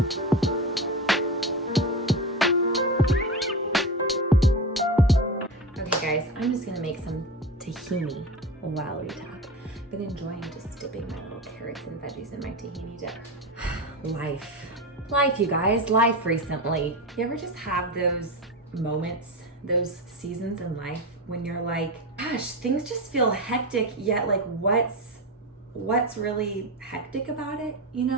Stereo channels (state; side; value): normal; both; correlation 0.22